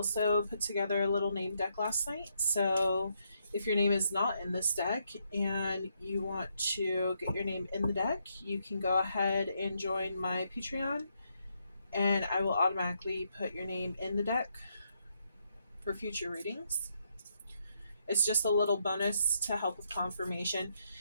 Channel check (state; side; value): inverted; both; correlation -0.77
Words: put together a little name deck last night, so if your name is not in this deck and you want to get your name in the deck, you can go ahead and join my Patreon, and I will automatically put your name in the deck for future readings. It's just a little bonus to help with confirmation.